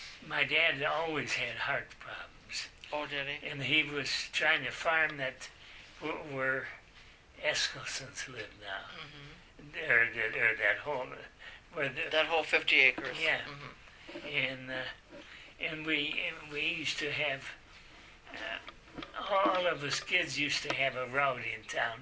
my dad always had heart problems. Oh, did he? And he was trying to farm that were Eskilsons live now. Or that whole where the That whole 50 acres. yeah, and we used to have all of us kids used to have a route in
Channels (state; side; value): identical; both; correlation 1.00